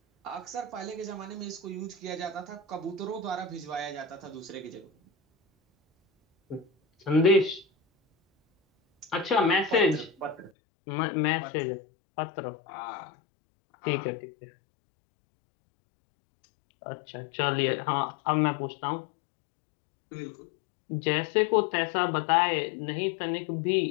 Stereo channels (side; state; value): right; drops out; at 10.5 s